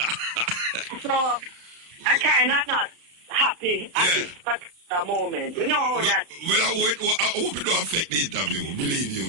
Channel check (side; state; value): left; late; 35 ms